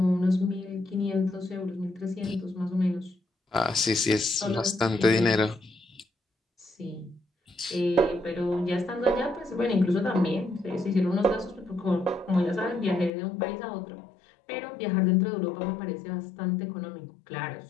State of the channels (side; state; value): right; drops out; at 13.1 s